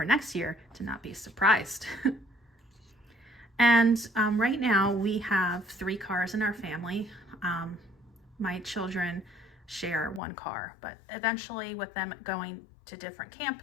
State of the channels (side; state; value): right; drops out; at 10.2 s